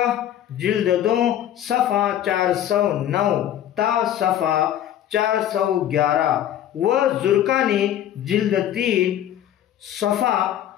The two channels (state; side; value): quieter; right; 11.2 dB